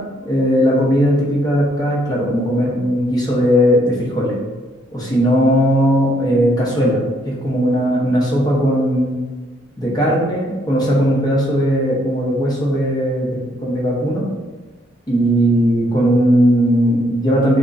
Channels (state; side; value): normal; both; correlation 0.70